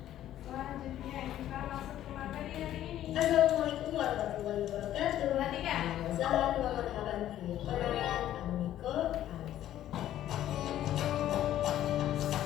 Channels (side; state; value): right; quieter; 12.4 dB